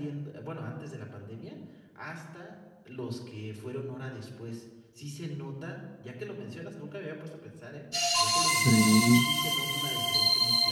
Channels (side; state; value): both; identical; correlation 1.00